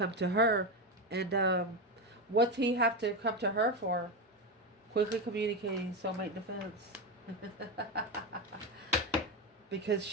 to her. And what's he have to come to her for? Quickly communicating soulmate defense. Because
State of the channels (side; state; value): both; normal; correlation 0.14